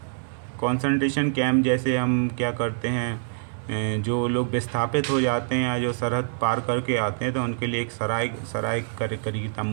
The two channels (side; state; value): left; silent; 61 dB below the other